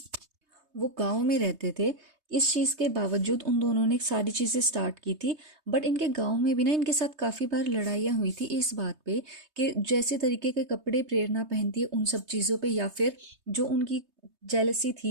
वो गांव में रहते थे। इस चीज़ के बावजूद उन दोनों ने सारी चीज़ें स्टार्ट की थी। बट इनके गांव में भी ना इनके साथ काफ़ी बार लड़ाइयाँ हुई थी इस बात पे कि जैसे तरीके के कपड़े प्रेरणा पहनती है उन सब चीज़ों पे, या फिर जो उनकी जेलसी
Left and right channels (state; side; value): late; left; 3.2 ms